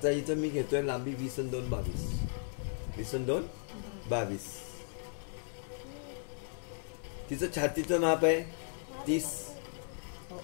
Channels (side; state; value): right; silent; digital silence